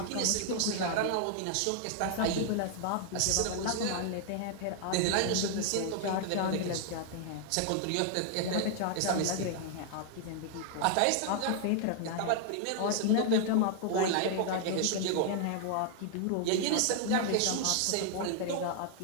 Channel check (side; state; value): both; different; correlation 0.00